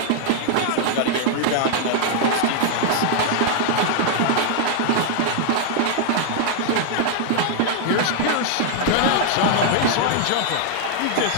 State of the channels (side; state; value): both; different; correlation -0.01